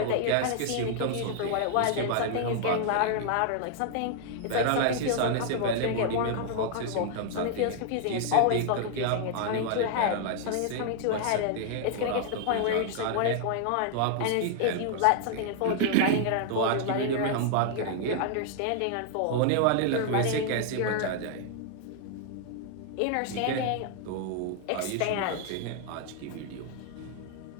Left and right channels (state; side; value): different; both; correlation 0.00